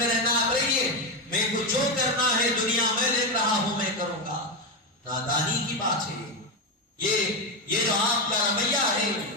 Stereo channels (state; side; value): normal; both; correlation 0.10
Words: رہنا، آپ رہیے، میں کو جو کرنا ہے دنیا میں دیکھ رہا ہوں میں کروں گا۔ نادانی کی بات ہے یہ جو آپ کا رویہ ہے،